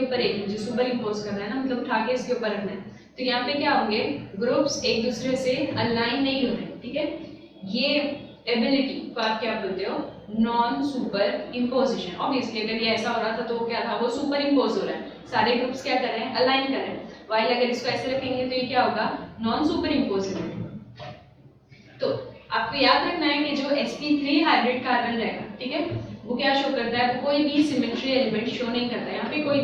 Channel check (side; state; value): both; identical; correlation 1.00